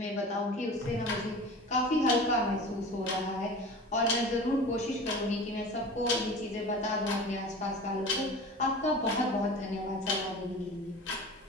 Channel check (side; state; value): both; normal; correlation 0.37